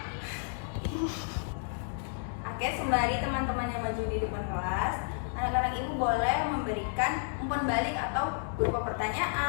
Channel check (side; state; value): right; silent; digital silence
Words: sembari teman-temannya maju di depan kelas, anak-anak Ibu boleh memberikan umpan balik atau berupa